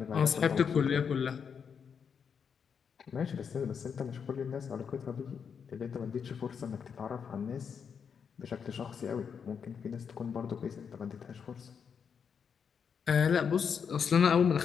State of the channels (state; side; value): quieter; right; 6.8 dB